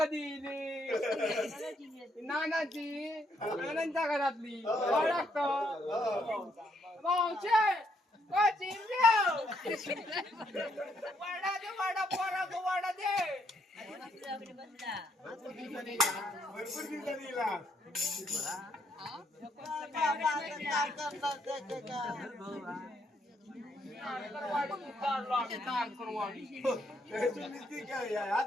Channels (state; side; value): normal; both; correlation 0.73